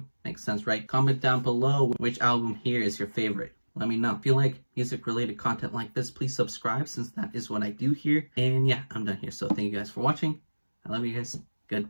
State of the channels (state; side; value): inverted; both; correlation -1.00